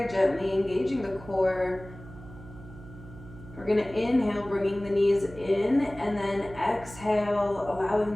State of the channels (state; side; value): noise; right; hum, 17 dB below the sound